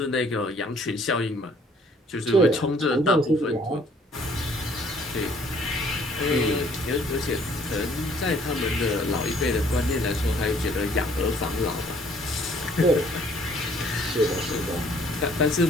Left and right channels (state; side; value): normal; both; correlation 0.60